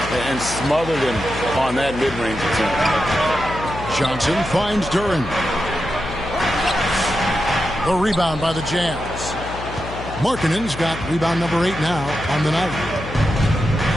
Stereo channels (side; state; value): left; noise; hum, 10 dB below the sound